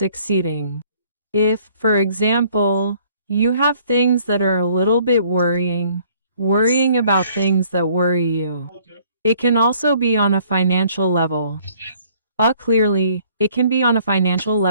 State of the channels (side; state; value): both; inverted; correlation -0.59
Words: If, for example, you have things that are a little bit worrying about things that worry you. It can also be on a financial level. Clearly, it can be on a financial